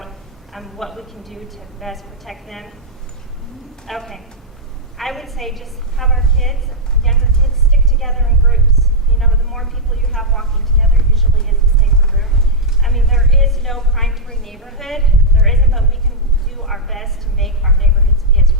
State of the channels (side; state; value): both; normal; correlation -0.05